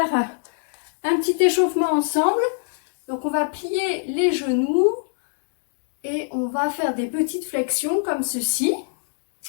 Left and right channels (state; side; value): silent; right; 63 dB below the other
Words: un petit échauffement ensemble. Donc on va plier les genoux et on va faire des petites flexions comme ceci.